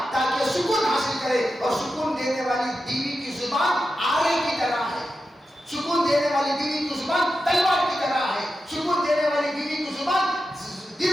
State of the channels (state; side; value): normal; both; correlation 0.90